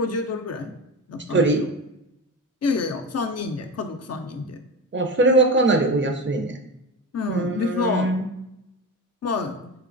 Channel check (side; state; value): both; normal; correlation 0.23